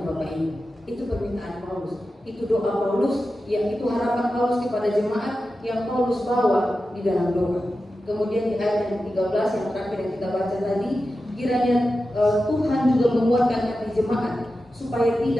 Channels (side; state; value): both; normal; correlation 0.92